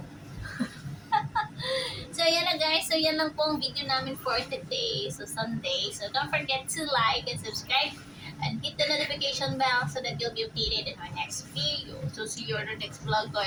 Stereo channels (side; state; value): both; identical; correlation 1.00